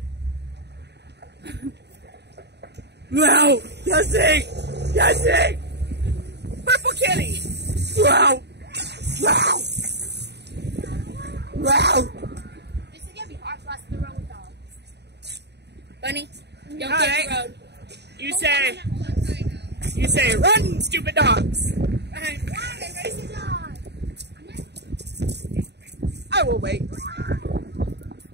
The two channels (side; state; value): left; late; 0.49 ms